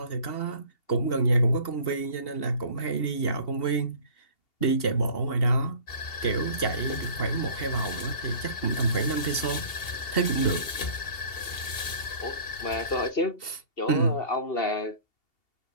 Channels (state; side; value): late; right; 2.7 ms